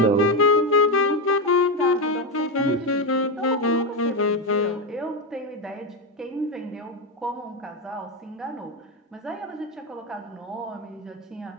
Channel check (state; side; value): normal; both; correlation 0.09